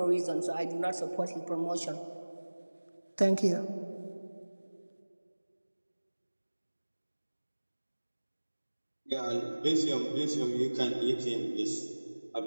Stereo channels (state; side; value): inverted; both; correlation -1.00